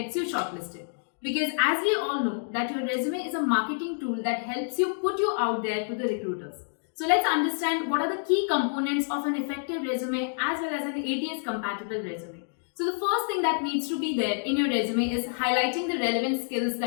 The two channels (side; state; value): right; silent; digital silence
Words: you shortlisted. Because as we all know that your resume is a marketing tool that helps you put you out there to the recruiters. So let's understand what are the key components of an effective resume as well as an ATS compatible resume. So the first thing that needs to be there in your resume is highlighting the relevant skills